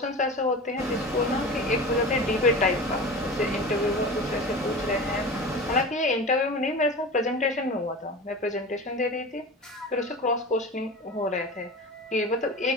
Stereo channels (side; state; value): both; normal; correlation 0.32